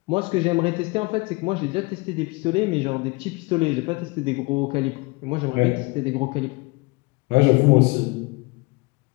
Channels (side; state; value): right; quieter; 25.6 dB